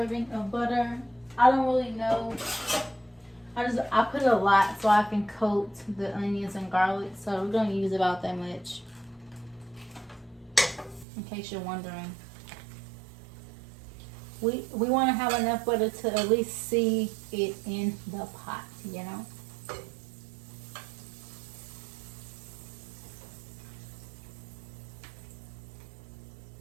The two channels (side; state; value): left; drops out; at 11.1 s